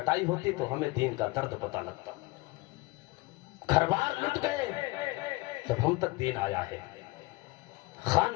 ہوتی تو ہمیں دین کا درد پتہ لگتا. گھر بار لٹ گئے تب ہم تک دین آیا ہے,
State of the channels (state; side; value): quieter; right; 22.9 dB